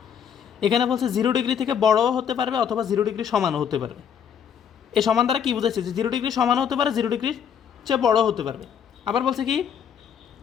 এখানে বলছে 0 ডিগ্রি থেকে বড়ও হতে পারবে অথবা 0 ডিগ্রি সমানও হতে পারবে। এই সমান দ্বারা কী বুঝেছে, যে 0 ডিগ্রি সমানও হতে পারে, 0 ডিগ্রির চেয়ে বড়ও হতে পারবে। আবার বলছে কি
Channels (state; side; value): quieter; right; 8.0 dB